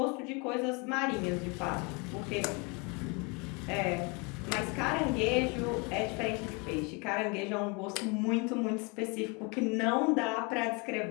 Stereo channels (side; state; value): right; quieter; 29.9 dB